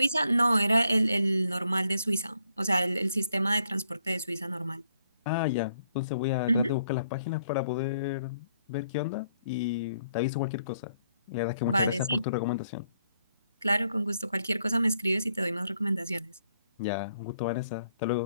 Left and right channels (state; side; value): inverted; both; correlation -0.72